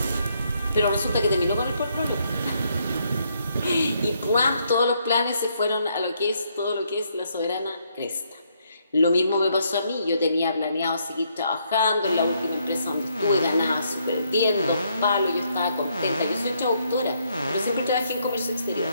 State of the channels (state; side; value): inverted; both; correlation -0.73